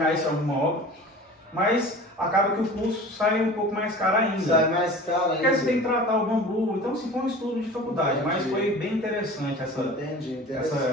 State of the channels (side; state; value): both; normal; correlation 0.39